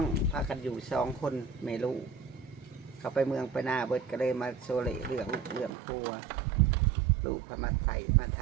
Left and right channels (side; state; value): left; drops out; at 5.7 s